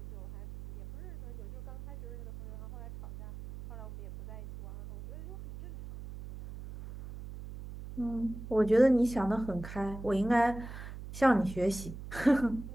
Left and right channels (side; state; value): right; noise; hum, 12 dB below the sound